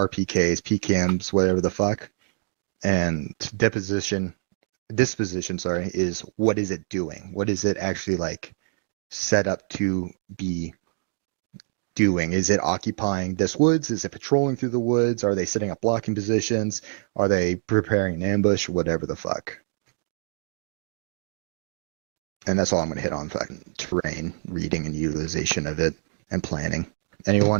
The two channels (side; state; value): left; silent; digital silence